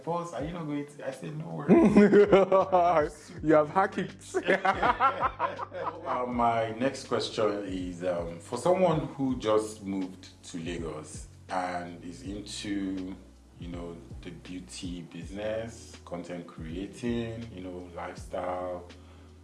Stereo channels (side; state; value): both; identical; correlation 1.00